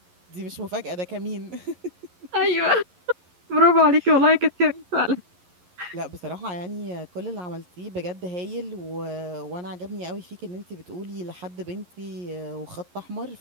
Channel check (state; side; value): late; left; 11 ms